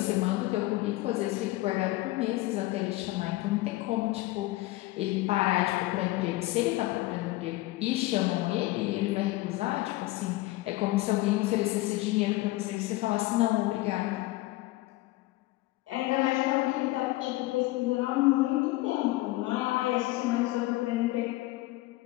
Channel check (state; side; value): quieter; right; 18.7 dB